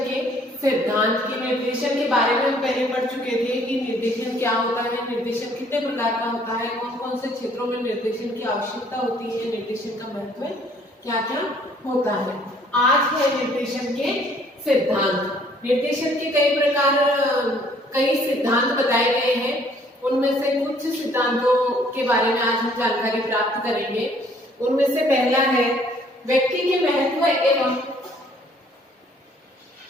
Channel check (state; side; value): normal; both; correlation 0.60